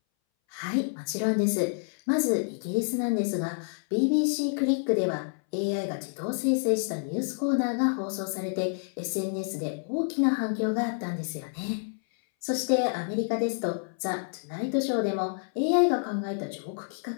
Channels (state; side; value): silent; right; 59 dB below the other